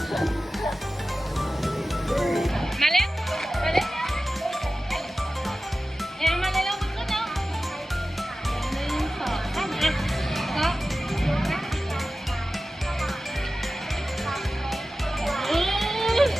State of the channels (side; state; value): both; normal; correlation 0.95